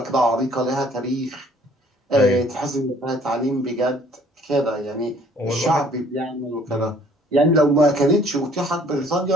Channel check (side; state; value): both; normal; correlation 0.58